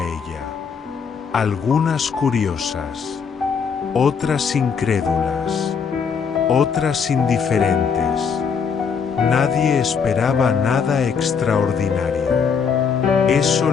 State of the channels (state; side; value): quieter; right; 6.3 dB